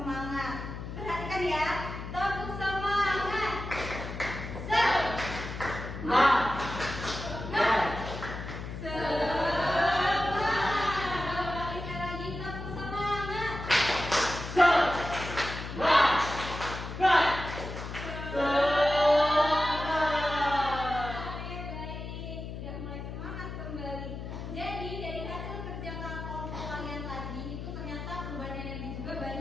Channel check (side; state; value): left; noise; hum, 8 dB below the sound